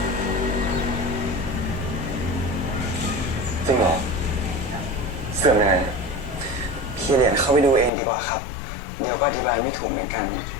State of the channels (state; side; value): drops out; right; at 7.9 s